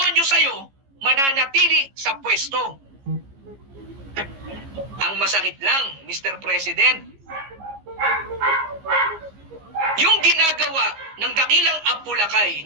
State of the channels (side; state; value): left; late; 15 ms